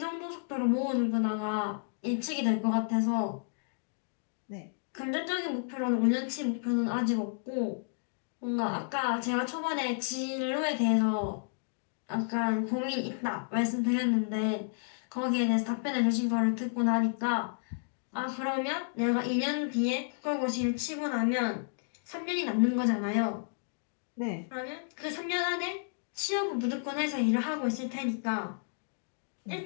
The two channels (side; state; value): right; silent; digital silence